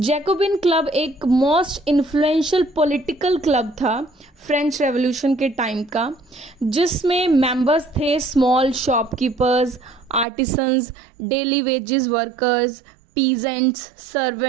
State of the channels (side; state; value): left; drops out; at 10.2 s